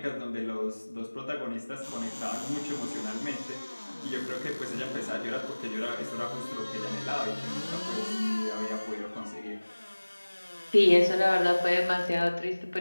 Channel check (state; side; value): inverted; both; correlation -1.00